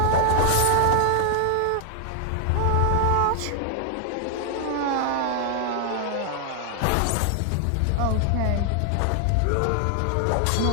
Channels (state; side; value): different; both; correlation 0.00